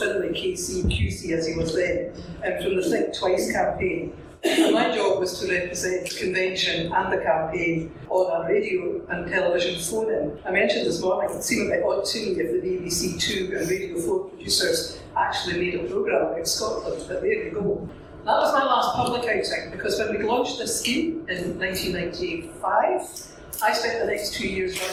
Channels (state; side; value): identical; both; correlation 1.00